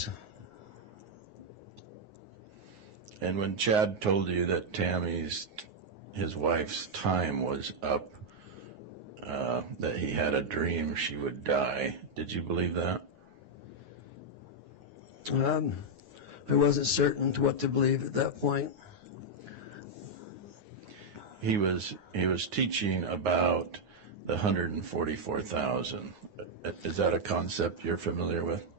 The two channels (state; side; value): late; left; 9.5 ms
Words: And when Chad told you that his wife's time was up, that he had a dream she would die, did you believe that? I wasn't certain to what to believe at that point. He was teaching about the 144,000. Is that a concept you're familiar with?